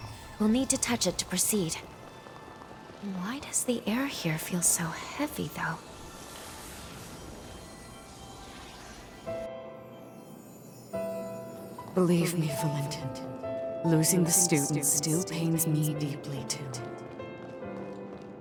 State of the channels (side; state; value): both; identical; correlation 1.00